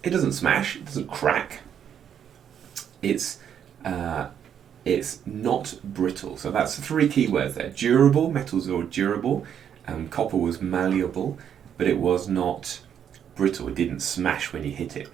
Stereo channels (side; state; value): left; quieter; 8.8 dB